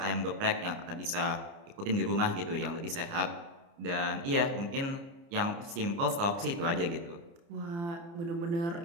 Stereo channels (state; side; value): late; left; 29 ms